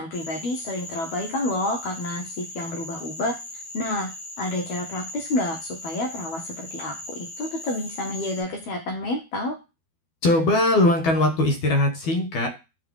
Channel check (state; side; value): late; right; 12 ms